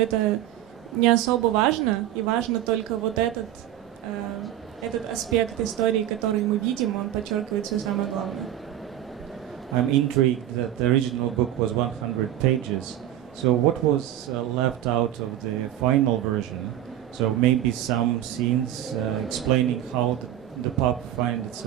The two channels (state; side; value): quieter; left; 12.2 dB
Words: не особо важно, и важно только вот этот аспект истории, который мы видим, он подчеркивает все самое главное? I'm intrigued that the original book was 100 pages. So what was left out of the final version? So maybe some scenes explaining how the pup finds